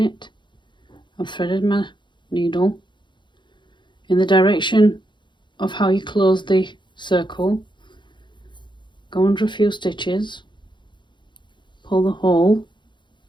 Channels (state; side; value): late; right; 0.23 ms